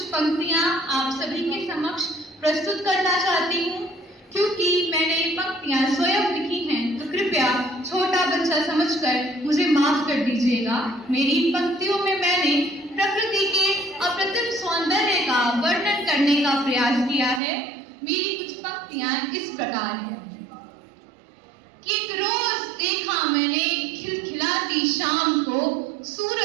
पंक्तियां आप सभी के समक्ष प्रस्तुत करना चाहती हूँ। क्योंकि मैंने ये पंक्तियां स्वयं लिखी हैं तो कृपया छोटा बच्चा समझकर मुझे माफ कर दीजिएगा। मेरी इन पंक्तियों में मैंने प्रकृति के अप्रतिम सौंदर्य का वर्णन करने का प्रयास किया है। मेरी कुछ पंक्तियां इस प्रकार हैं कि एक रोज देखा मैंने खिलखिलाती शाम को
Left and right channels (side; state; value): left; drops out; at 17.4 s